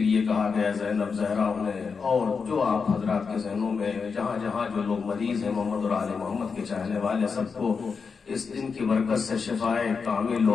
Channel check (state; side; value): quieter; right; 5.4 dB